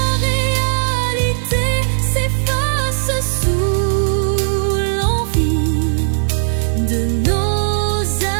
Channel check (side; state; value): left; silent; 66 dB below the other